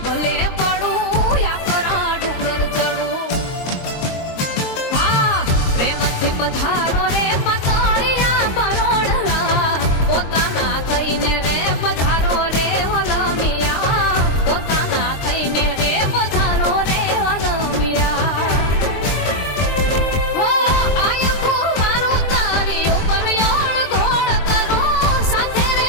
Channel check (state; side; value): late; right; 23 ms